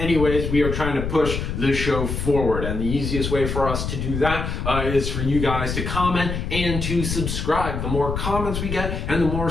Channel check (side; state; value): left; noise; rumble, 3 dB below the sound